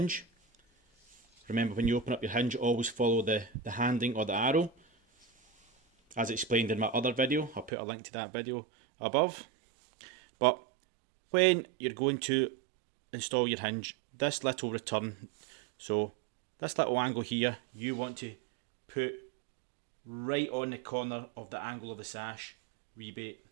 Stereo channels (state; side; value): drops out; left; at 7.7 s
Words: remember when you open up your hinge always follow the handing or the arrow, as explained in my other video. I'll put a link to that video above. But when you're going to install your hinge, this little return, so this little angle here, you want to put right on the corner of the angle of the sash rebate.